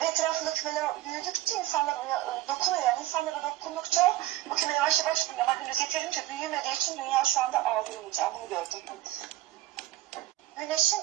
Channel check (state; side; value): quieter; left; 15.3 dB